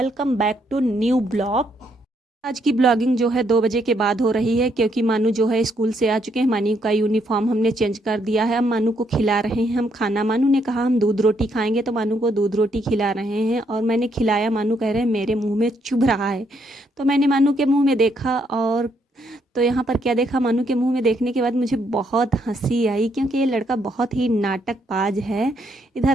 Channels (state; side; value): normal; both; correlation 0.74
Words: back to new blog. आज की ब्लॉगिंग जो है 2 बजे के बाद हो रही है, क्योंकि मानू जो है स्कूल से आ चुके हैं। मानू का यूनिफॉर्म हमने चेंज कर दिया है। अब मानू को खिला रहे हैं हम खाना। मानू ने कहा हम दूध रोटी खाएंगे, तो मानू को दूध रोटी खिला रहे हैं और मैंने खिलाया। मानू कह रहे हैं मेरे मुंह में चुभ रहा है, तो मैंने मानू के मुंह में देखा, और तो यहाँ पर क्या देखा, मानू के मुंह में देखने के बाद मुझे बहुत हंसी आई, क्योंकि ये लड़का बहुत ही नाटकबाज है।